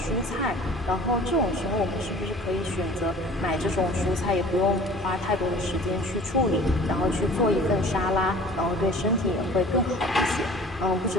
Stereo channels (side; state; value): both; normal; correlation 0.46